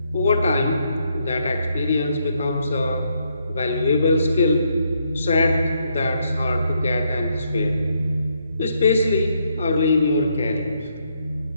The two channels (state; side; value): inverted; both; correlation -0.75